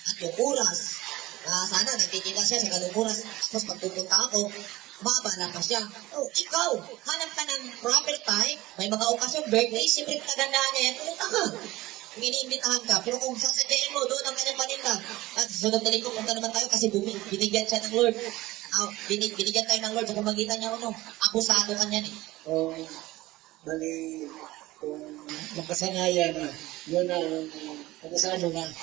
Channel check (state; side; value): quieter; left; 18.2 dB